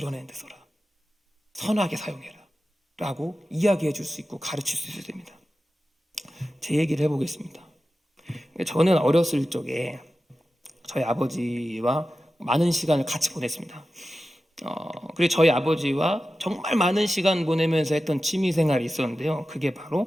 데 써라. 선하게 사용해라. 라고 이야기해 줄 수 있고 가르칠 수 있어야 됩니다. 제 얘기를 해보겠습니다. 저는 어렸을 적에 저희 아버지와 많은 시간을 같이 보냈습니다. 그리고 저희 아버지와 정말 많은 시간 보내면서 했던 취미 생활이 있었는데요. 그게 바로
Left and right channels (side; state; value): both; normal; correlation 0.93